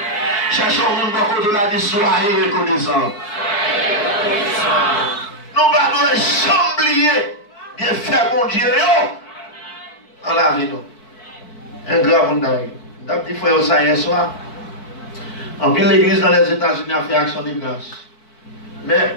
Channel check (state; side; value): late; right; 4.6 ms